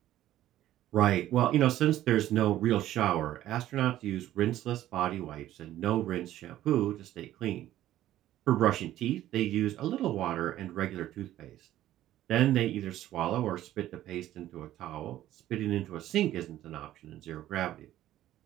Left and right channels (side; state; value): left; quieter; 13.5 dB